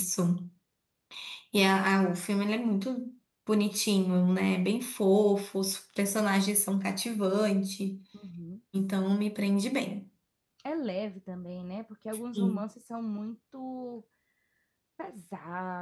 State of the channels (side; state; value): both; identical; correlation 1.00